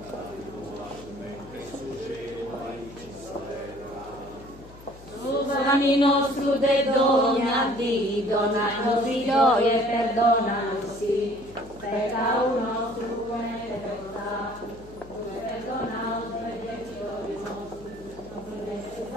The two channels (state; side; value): noise; left; hum, 20 dB below the sound